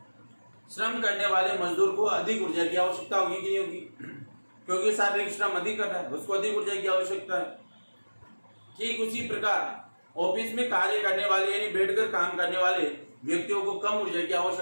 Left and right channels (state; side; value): inverted; both; correlation -1.00